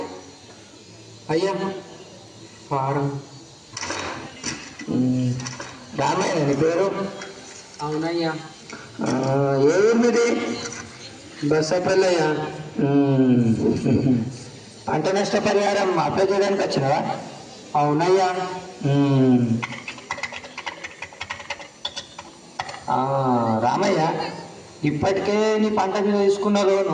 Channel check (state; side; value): identical; both; correlation 1.00